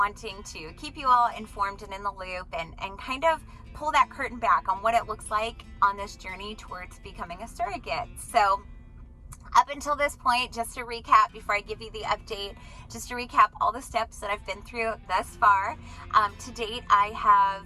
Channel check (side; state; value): both; identical; correlation 1.00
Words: to keep you all informed and in the loop and kind of pull that curtain back on what it looks like on this journey towards becoming a surrogate. So up until this point, just to recap before I give you the update, just to recap all the steps that I've been through thus far. To date, I have,